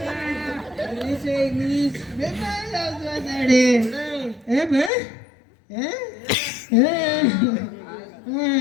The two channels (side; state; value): right; drops out; at 4.9 s